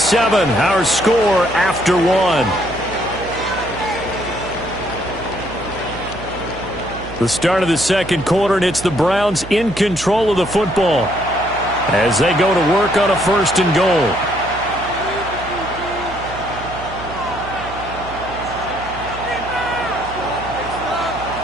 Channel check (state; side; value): noise; right; hum, 13 dB below the sound